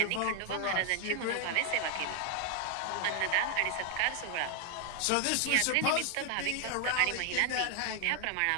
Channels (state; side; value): different; both; correlation 0.00